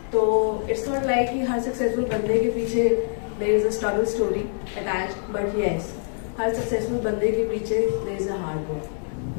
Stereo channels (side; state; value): right; silent; digital silence